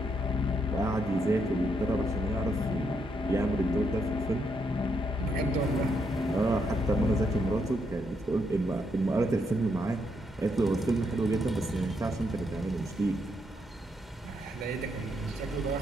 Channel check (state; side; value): normal; both; correlation 0.78